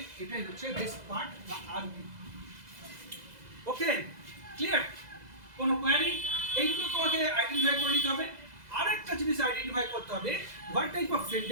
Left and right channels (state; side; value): late; left; 2.0 ms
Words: এটাই হচ্ছে রেস্ট পার্ট বা আরপি। ওকে, ক্লিয়ার? কোনো কোয়ারি? এইগুলো তোমাকে আইডেন্টিফাই করে নিতে হবে। আরেকটা জিনিস আইডেন্টিফাই করতে হবে, what type of